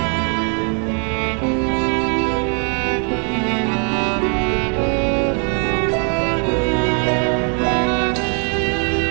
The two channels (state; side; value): quieter; left; 39.7 dB